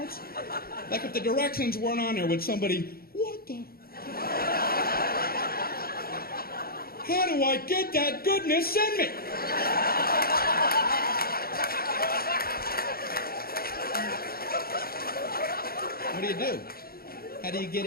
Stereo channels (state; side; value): late; right; 0.44 ms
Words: Like if the directions weren't on there, would somebody, what the? How do I get that goodness in me? What do you do? How do you get